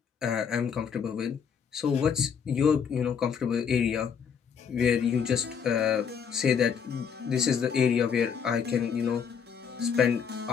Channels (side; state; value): right; quieter; 7.0 dB